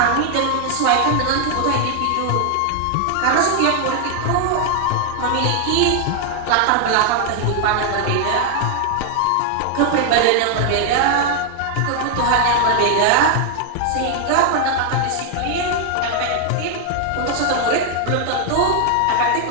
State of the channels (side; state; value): both; different; correlation 0.00